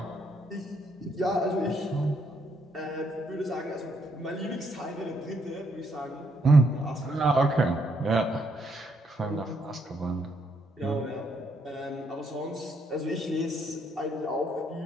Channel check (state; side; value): normal; both; correlation 0.73